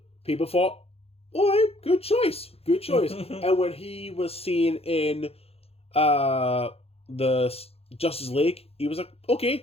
people thought, "All right, good choice." And when he was seen in the Justice League, he was like, "Okay,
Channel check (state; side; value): late; right; 0.29 ms